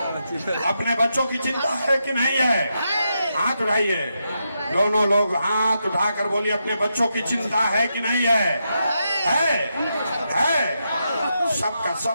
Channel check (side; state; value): both; inverted; correlation -0.84